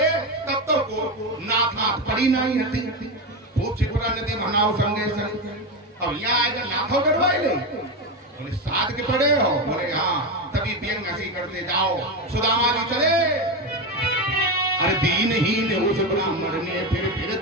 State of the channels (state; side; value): normal; both; correlation 0.15